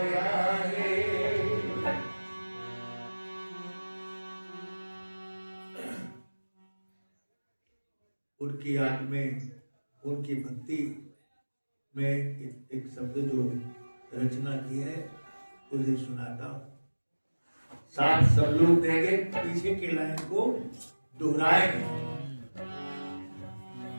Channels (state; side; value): inverted; both; correlation -1.00